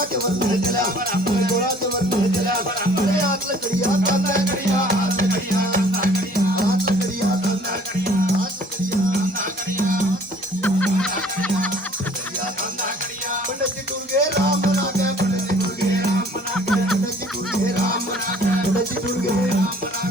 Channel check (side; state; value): both; normal; correlation 0.54